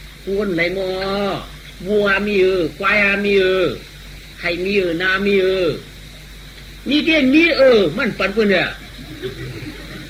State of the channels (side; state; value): both; identical; correlation 1.00